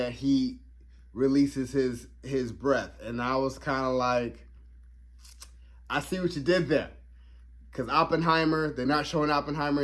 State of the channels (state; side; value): identical; both; correlation 1.00